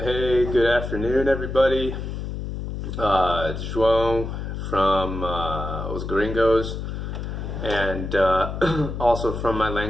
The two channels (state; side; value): noise; left; hum, 6 dB below the sound